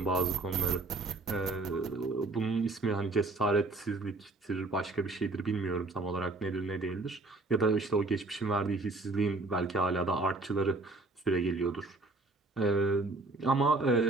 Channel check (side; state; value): left; quieter; 3.2 dB